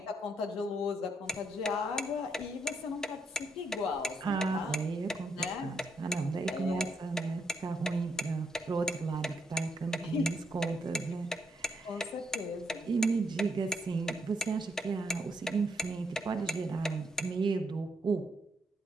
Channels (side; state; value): both; normal; correlation 0.76